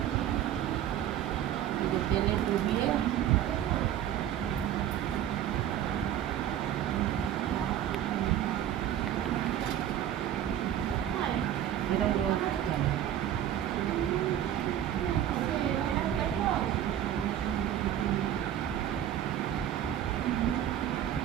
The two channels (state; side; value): quieter; left; 11.0 dB